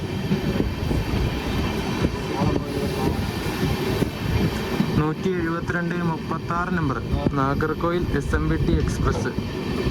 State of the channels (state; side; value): identical; both; correlation 1.00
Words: Number Nagercoil SMBT express.